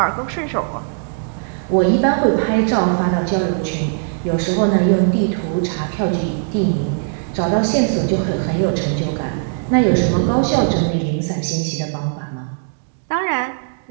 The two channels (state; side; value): silent; left; digital silence